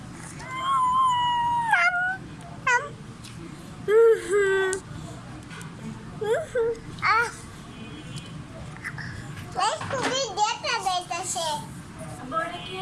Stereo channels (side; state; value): both; identical; correlation 1.00